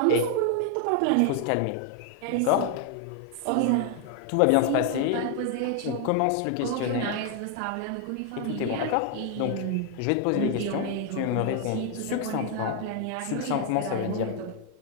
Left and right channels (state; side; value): different; both; correlation 0.00